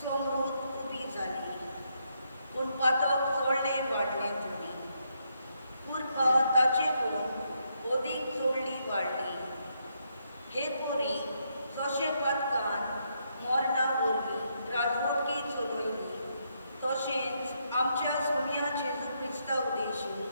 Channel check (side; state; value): both; inverted; correlation -0.78